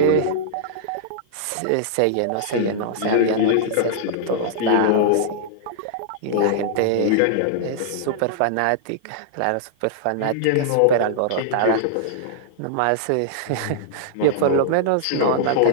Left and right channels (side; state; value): both; different; correlation -0.01